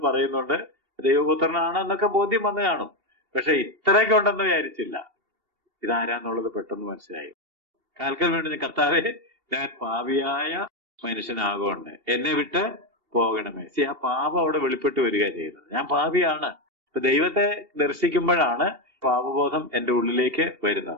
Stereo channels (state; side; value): late; left; 2.7 ms